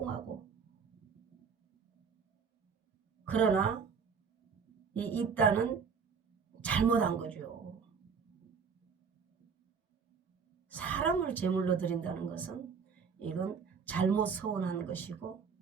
그러나 이 입다는 잘못한 거죠. 사람을 제물로 드린다는 것은 이건 잘못 서운한 것이고,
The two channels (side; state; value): left; quieter; 5.9 dB